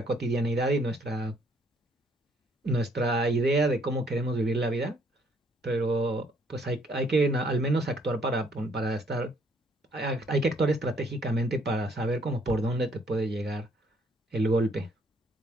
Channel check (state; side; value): normal; both; correlation 0.65